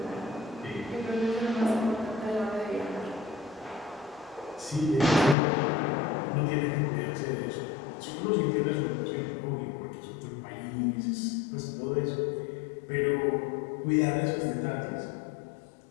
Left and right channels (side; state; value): right; drops out; at 5.4 s